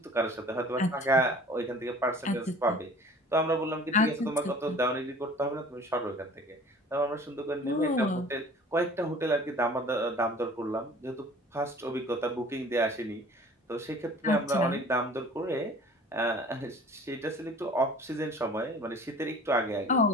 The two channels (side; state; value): both; normal; correlation 0.47